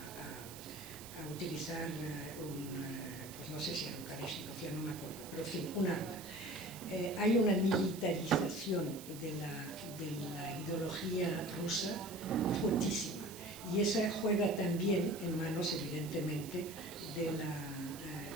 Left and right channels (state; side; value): noise; right; hiss, 14 dB below the sound